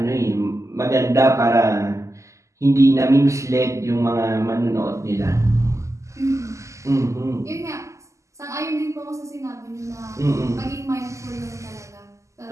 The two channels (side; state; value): left; late; 0.15 ms